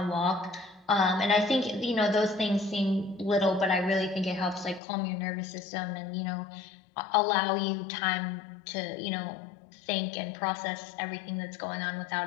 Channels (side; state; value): right; drops out; at 4.8 s